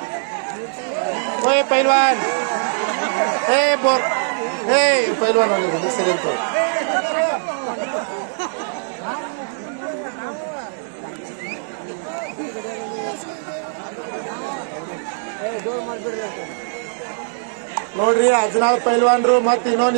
ಪೈಲ್ವಾನ್ ಪೈಲ್ವಾನ್ ಹಿಂದಕ್ಕೆ ಸರಿ ಅಂತ. ನೋಡ್ರಿ, ಅಜ್ನಾಳ್ ಪೈಲ್ವಾನ್ರು ಮತ್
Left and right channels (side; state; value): left; silent; digital silence